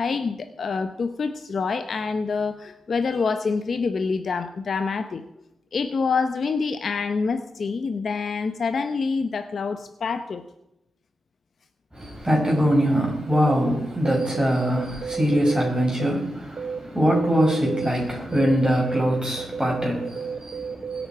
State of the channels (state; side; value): normal; both; correlation 0.88